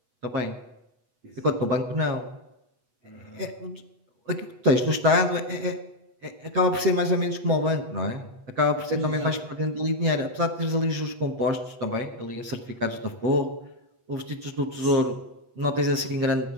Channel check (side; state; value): left; late; 8.2 ms